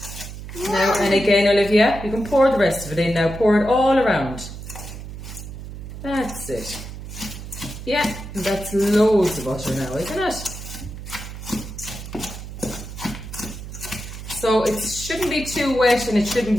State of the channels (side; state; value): right; noise; hum, 11 dB below the sound